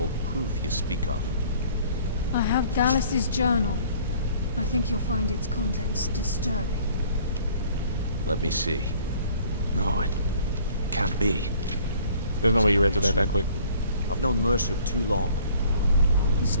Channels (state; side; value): inverted; both; correlation -0.54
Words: proof you speak of? I have Gallus's journal. I think you'll find its contents disturbing. Let me see. No, it can't be. There's no way you read through that quick. I've known Mercer too long. It's